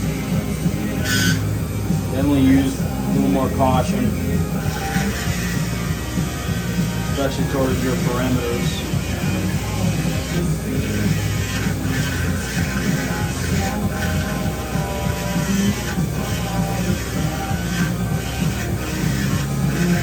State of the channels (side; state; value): both; identical; correlation 1.00